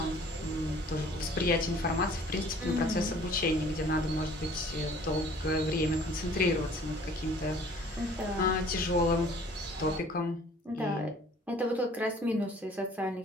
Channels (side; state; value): both; normal; correlation 0.53